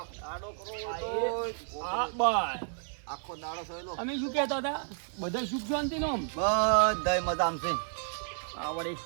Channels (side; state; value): left; silent; digital silence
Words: આખો દાડો થયેલો. અમે શું કહેતા હતા બધા સુખ શાંતિ નો બધા મજામ છે. આવડે